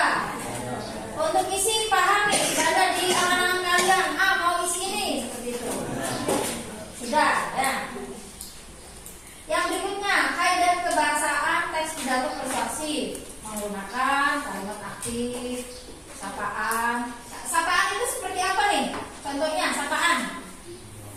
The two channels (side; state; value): both; identical; correlation 1.00